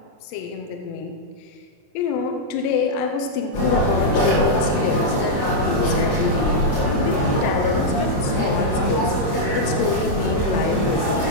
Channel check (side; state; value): right; late; 28 ms